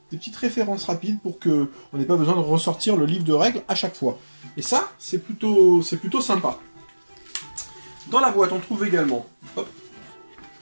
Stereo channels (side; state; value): both; inverted; correlation -1.00